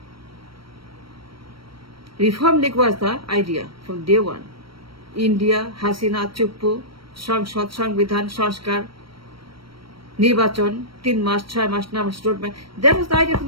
Reform League was the idea from day one. India, Hasina, Chuppu, সংসদ, সংবিধান, সংস্কার, নির্বাচন, 3 মাস, 6 মাস, 9 মাস, road map. That was the idea from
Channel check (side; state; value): left; late; 0.74 ms